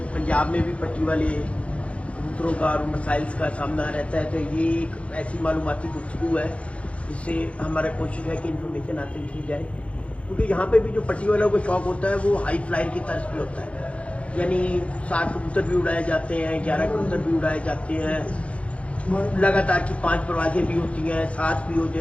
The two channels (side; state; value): right; late; 0.062 ms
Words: पंजाब में भी पट्टी वाले कबूतरों का और मसाइल्स का सामना रहता है। तो ये एक ऐसी मालूमाती गुफ्तगू है जिससे हमारा कोशिश है कि इन्फॉर्मेशन हासिल की जाए, क्योंकि यहाँ पे भी जो पट्टी वालों को शौक होता है वो हाई फ्लायर की तर्ज पे होता है, यानी 7 कबूतर भी उड़ाए जाते हैं, 11 कबूतर भी उड़ाए जाते हैं, लगातार की 5 परवाजें भी होती हैं, 7 भी